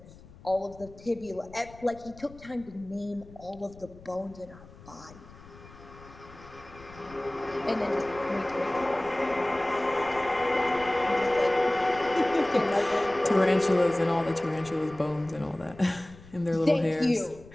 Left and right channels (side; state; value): left; noise; rumble, 21 dB below the sound